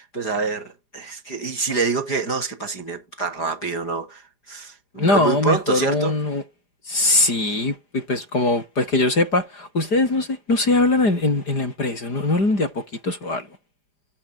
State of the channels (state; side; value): late; right; 4.9 ms